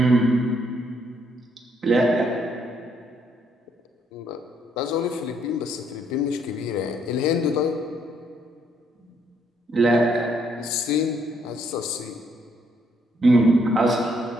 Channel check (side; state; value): both; normal; correlation 0.70